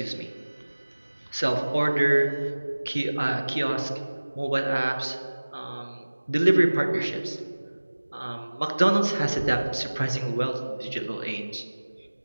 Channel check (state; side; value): inverted; both; correlation -1.00